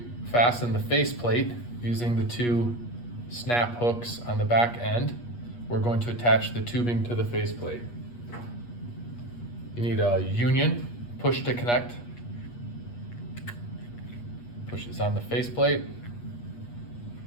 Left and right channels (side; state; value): right; late; 8.4 ms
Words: fasten the faceplate, using the two snap hooks on the back end, we're going to attach the tubing to the faceplate. You need a union push to connect. Push this on the faceplate.